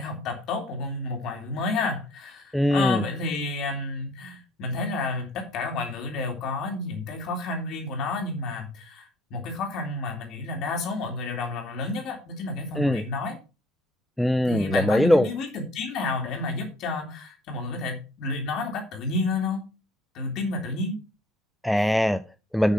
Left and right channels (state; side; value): normal; both; correlation 0.59